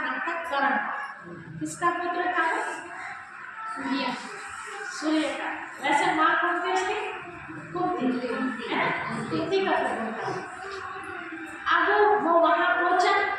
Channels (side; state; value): both; identical; correlation 1.00